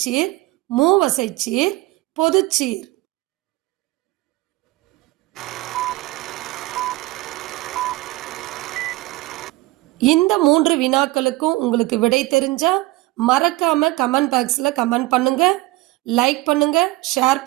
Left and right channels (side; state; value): left; quieter; 19.3 dB